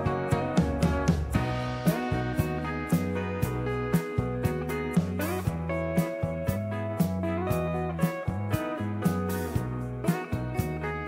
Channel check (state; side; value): identical; both; correlation 1.00